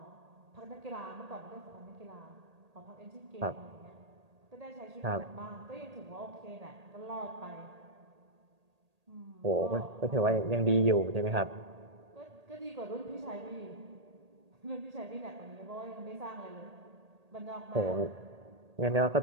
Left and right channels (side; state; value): left; late; 1.8 ms